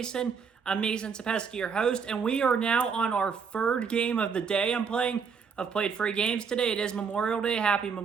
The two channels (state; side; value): quieter; left; 6.1 dB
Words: I'm Mason Sapesky, your host, and we are now on our third game of the day I'm playing. I've played 3 games today. It is Memorial Day. Happy